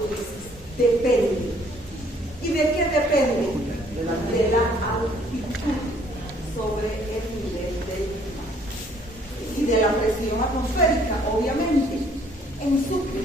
dices, depende. ¿Y de qué depende? De la altitud sobre el nivel del mar y de la presión atmosférica, obviamente. En Sucre,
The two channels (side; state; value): both; normal; correlation 0.61